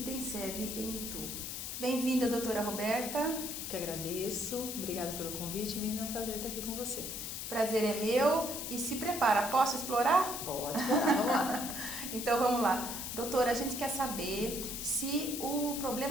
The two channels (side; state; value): left; noise; hiss, 5 dB below the sound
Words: tem sede em Itu. Bem-vinda, doutora Roberta. Que agradeço, obrigada pelo convite, Miriam, é um prazer estar aqui com você. Prazer é meu e se prepara, posso explorar? Pode explorar, vamos lá. Então vamos lá. Doutora, a gente quer saber se o